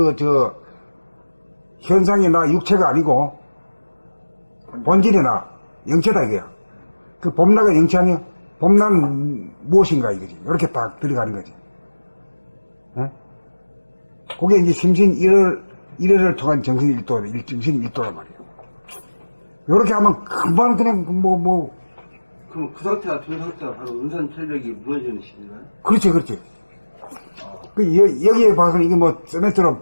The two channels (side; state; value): both; inverted; correlation -1.00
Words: 현상이 나 육체가 아니고, 본질이 나, 영체다, 이게요. 그 봄나가 영체 아니야? 봄나는 무엇인가 이거지. 이렇게 딱 들어가는 거지. 그게 이제 심신 1회를 통한 정신 정신 1도란 말이야. 요렇게 하면 금방 그냥 그럼 그 상태가 된 상태가 바로 은산철벽이 무너지는 시기인가요? 그렇지. 여기에 봐서는 이게 세멘트로